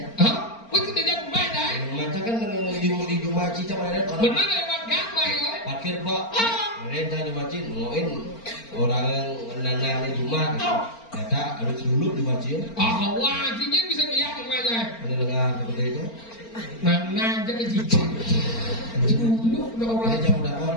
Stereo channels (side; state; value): right; late; 4.4 ms